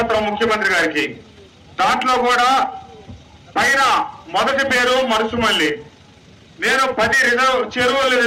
ముఖ్యమంత్రి గారికి. దాంట్లో కూడా పైన మొదటి పేరు మరుసుమల్లి. నేను 10 చెరువులు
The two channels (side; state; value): both; identical; correlation 1.00